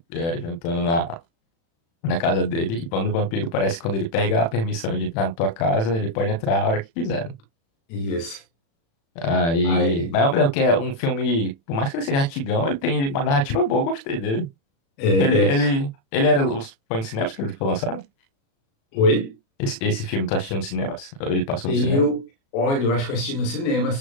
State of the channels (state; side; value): late; right; 36 ms